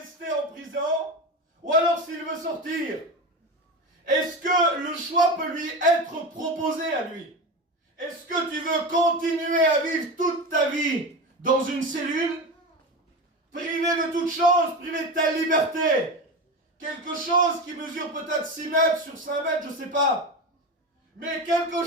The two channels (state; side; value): normal; both; correlation 0.23